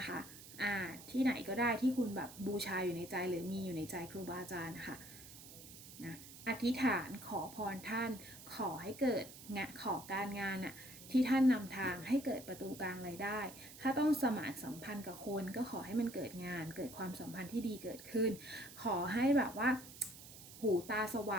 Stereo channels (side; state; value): right; noise; hiss, 16 dB below the sound